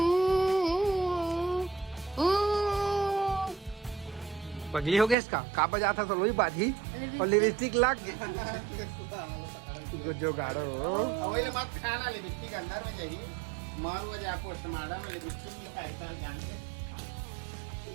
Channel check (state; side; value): drops out; left; at 5.2 s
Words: पगली हो गया इसका का बजा था तो वही बात ही और लिपस्टिक लग जो गाड़ो अवेले मत खाना लिपस्टिक अंदर में जाही मार वो जा पोस्टमार्टम में लिपस्टिक लिखाई था जान